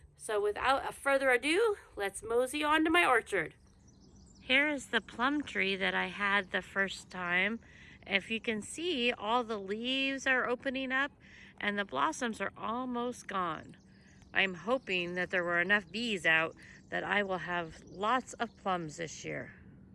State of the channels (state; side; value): identical; both; correlation 1.00